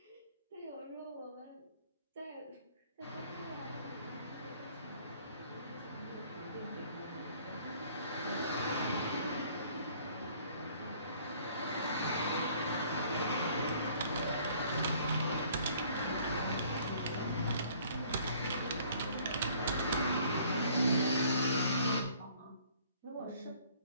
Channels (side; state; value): both; inverted; correlation -0.57